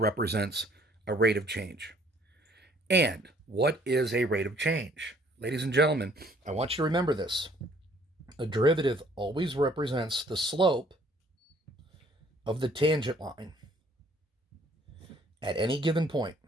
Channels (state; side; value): normal; both; correlation 0.59